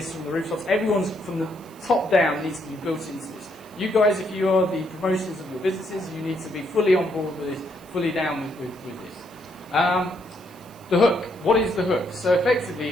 from the rooftops. Everyone's from the top down needs to be built into this. You guys, if you are the promotions of your businesses, you need to be fully on board with this, fully down with this. The hook. What is the hook? So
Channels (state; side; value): noise; right; hiss, 25 dB below the sound